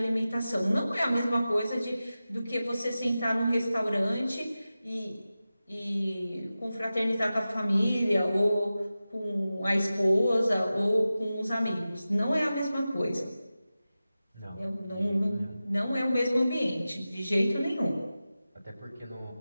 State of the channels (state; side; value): inverted; both; correlation -0.95